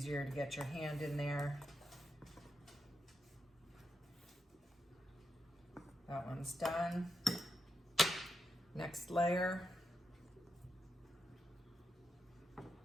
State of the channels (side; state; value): both; normal; correlation 0.85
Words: to get your hand in there. That one's done. Next layer.